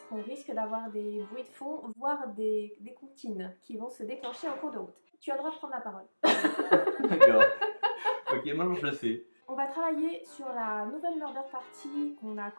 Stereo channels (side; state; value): both; inverted; correlation -1.00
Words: qu'on risque d'avoir des bruits de fond, voire des comptines qui vont se déclencher en cours de route. Tu as le droit de prendre la parole. D'accord. Ok, maintenant je le sais. On va travailler sur la nouvelle Murder Party qu'on a